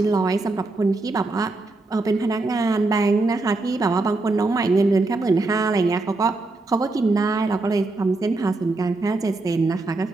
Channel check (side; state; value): left; quieter; 3.2 dB